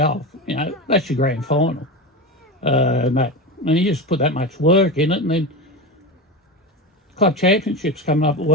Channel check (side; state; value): both; normal; correlation 0.21